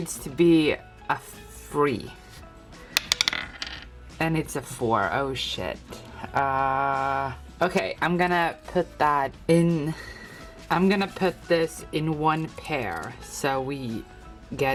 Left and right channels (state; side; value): identical; both; correlation 1.00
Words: to be a 3. And it's a 4. Oh shit. Okay, I'm gonna put that in. I'm gonna put this in 1 pair. So we